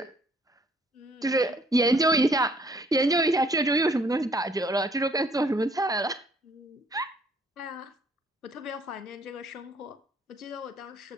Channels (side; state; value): both; normal; correlation 0.63